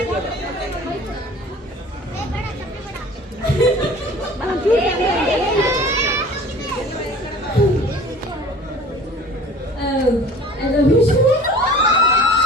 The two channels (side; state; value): both; normal; correlation 0.45